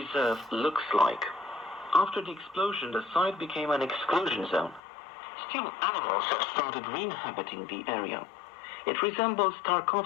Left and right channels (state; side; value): drops out; right; at 4.8 s